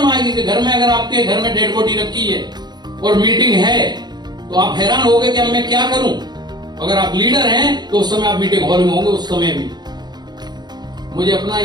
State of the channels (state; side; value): late; left; 0.20 ms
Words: आएगी कि घर में, अगर आपके घर में डेड बॉडी रखी है और मीटिंग है तो आप हैरान होगे कि अब मैं क्या करूं। अगर आप लीडर हैं तो उस समय आप मीटिंग हॉल में होंगे। उस समय भी मुझे अपना